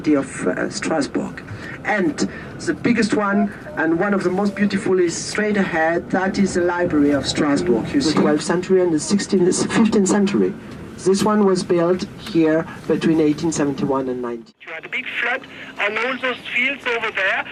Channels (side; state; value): both; identical; correlation 1.00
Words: of Strasbourg. And the biggest one and one of the most beautiful is straight ahead. That is the Library of Strasbourg. You see, the 12th century and the 15th century. This one was built here between 1871 and 19. You had a big flood on all those fields over there,